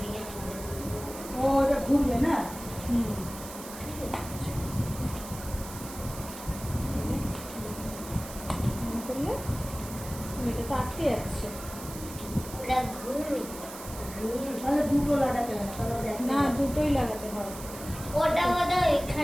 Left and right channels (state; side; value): noise; right; hiss, 13 dB below the sound